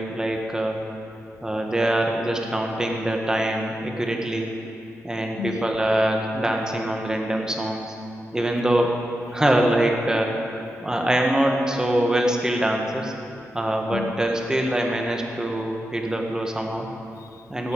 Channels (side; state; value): both; normal; correlation 0.89